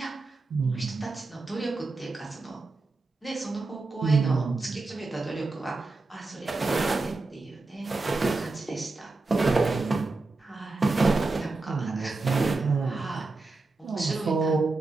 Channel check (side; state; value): left; quieter; 3.5 dB